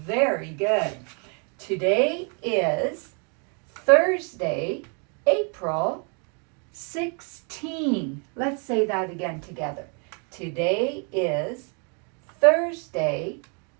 Very good. Today is Thursday, April 16. Let's say that again together. Today is Thursday,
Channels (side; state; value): left; quieter; 37.6 dB